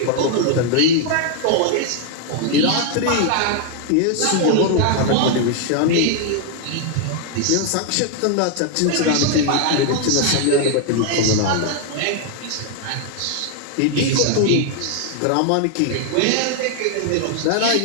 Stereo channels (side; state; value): both; different; correlation 0.00